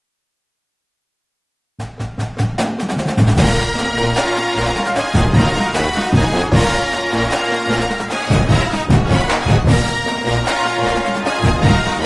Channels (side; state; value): both; identical; correlation 1.00